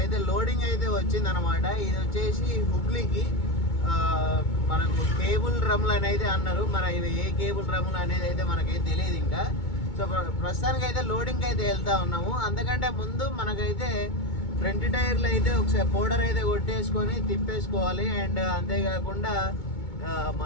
లోడింగ్ అయితే వచ్చింది అనమాట. ఇది వచ్చేసి హుబ్లీకి మనకు కేబుల్ డ్రమ్లు అనేది అన్నారు. మరి ఇవి ఏ కేబుల్ డ్రమ్లు అనేది అయితే మనకైతే తెలియదు ఇంకా. సో ప్రస్తుతానికి అయితే లోడింగ్కి అయితే వెళ్తా ఉన్నాము. అందుకంటే ముందు మనకైతే ఫ్రంట్ టైర్లు అయితే ఒకసారి పౌడర్ అయితే కొట్టేసుకొని తిప్పేసుకోవాలి. అండ్ అంతేకాకుండా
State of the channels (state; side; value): late; right; 2.2 ms